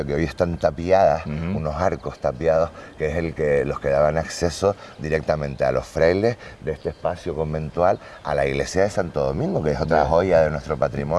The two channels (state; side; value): identical; both; correlation 1.00